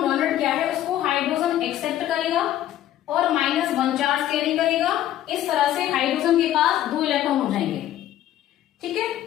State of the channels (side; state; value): right; quieter; 12.5 dB